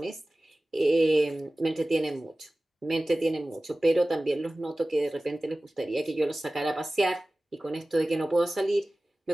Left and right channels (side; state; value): both; normal; correlation 0.97